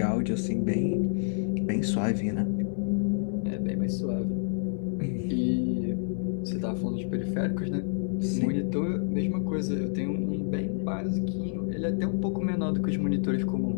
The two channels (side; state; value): right; silent; 59 dB below the other